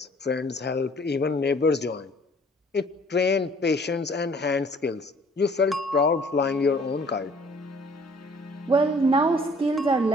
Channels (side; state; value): both; normal; correlation 0.56